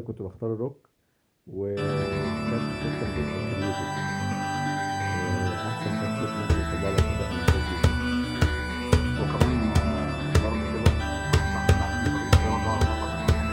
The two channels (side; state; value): both; identical; correlation 1.00